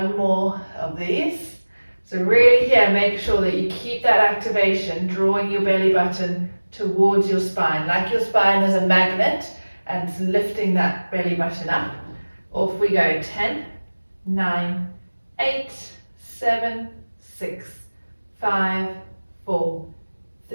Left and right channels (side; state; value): both; inverted; correlation -1.00